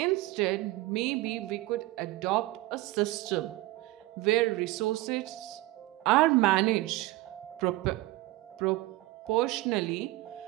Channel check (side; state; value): left; quieter; 18.5 dB